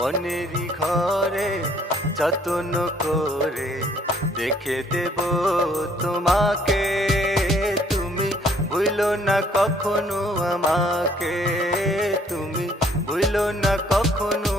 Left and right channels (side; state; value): both; normal; correlation 0.62